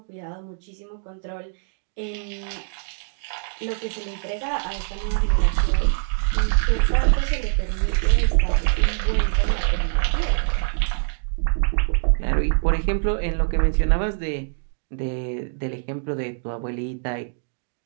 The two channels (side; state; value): left; silent; digital silence